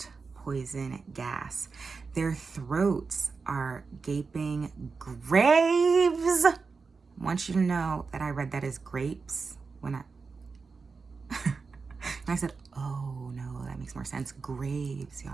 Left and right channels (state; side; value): quieter; left; 4.7 dB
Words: poison gas. Their throats are gaping graves. I want you to know that I read that as grapes when and I said, oh no, that makes more sense. Graves,